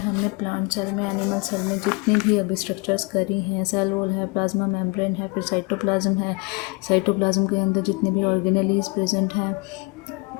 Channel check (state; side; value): quieter; right; 27.6 dB